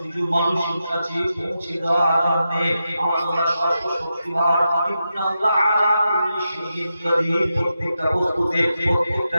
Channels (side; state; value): both; inverted; correlation -0.88